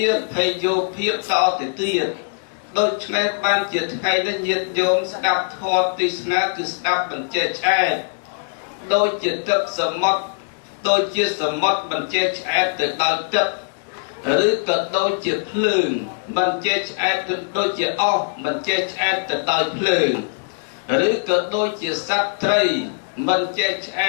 ាភ័យយោភាពតទៅទៀត ដូចនេះបានជាថ្ងៃនេះញាតិញោមស្ដាប់ធម៌ទេសនាគឺស្ដាប់បញ្ជាឆ្អែតដូចជាទឹកសមុទ្រដូចជាសមុទ្របញ្ជាឆ្អែតទៅដល់ទឹកឬក៏ដូចជាភ្លើងបញ្ជាឆ្អែតដូចជាអស់បញ្ជាឆ្អែតទៅដល់ភ្លើងឬក៏ដូចជាសត្វត្រីបញ្ជាឆ្អ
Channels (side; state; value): right; silent; 65 dB below the other